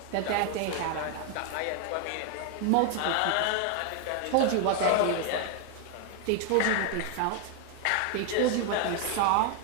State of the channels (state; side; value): different; both; correlation 0.01